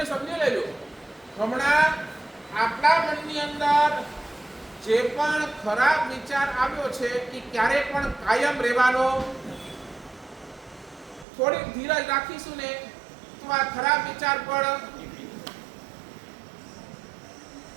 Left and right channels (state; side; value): drops out; left; at 11.2 s